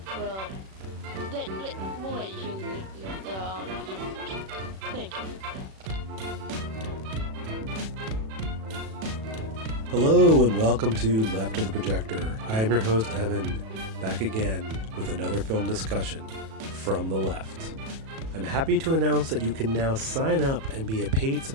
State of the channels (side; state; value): left; late; 37 ms